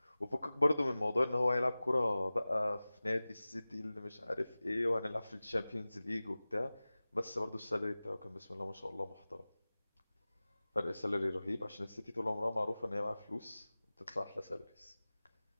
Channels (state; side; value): inverted; both; correlation -0.98